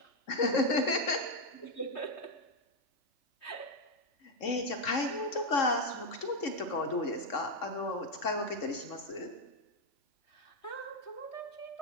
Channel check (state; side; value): late; right; 3.7 ms